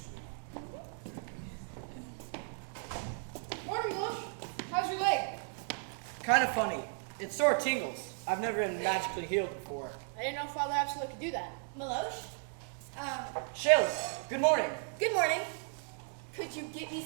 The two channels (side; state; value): left; silent; 54 dB below the other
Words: Morning, Lush. How's your leg? Kind of funny. It sort of tingles. I've never been magically healed before. I didn't know Father Absolute could do that. Meloche? Shayla, good morning. Good morning. Could you get me